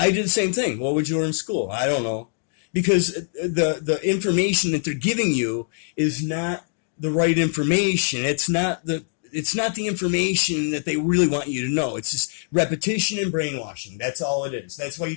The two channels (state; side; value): silent; right; digital silence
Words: did the same thing. What would you learn in school? I don't know. Because the information that they're giving you is not the right information. It's not the information that they really want you to know. It's just repetition and brainwashing. That's all it is. That's why you